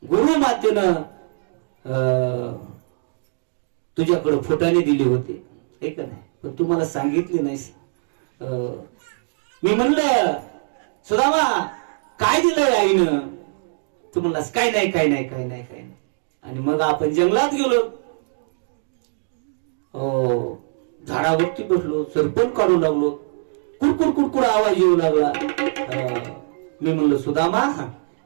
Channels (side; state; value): left; silent; digital silence